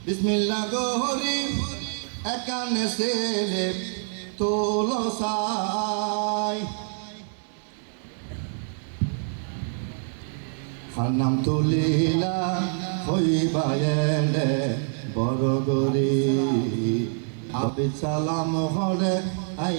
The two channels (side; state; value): left; silent; digital silence